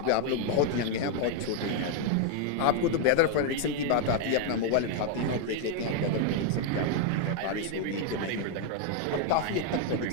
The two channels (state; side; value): different; both; correlation 0.00